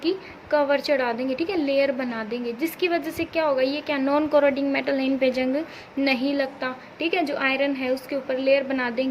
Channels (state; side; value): identical; both; correlation 1.00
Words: कवर चढ़ा देंगे, ठीक है, लेयर बना देंगे, जिसकी वजह से क्या होगा, ये क्या नॉन कोरोडिंग मेटल है, इन पे जंग नहीं लगता, ठीक है। जो आयरन है उसके ऊपर लेयर बना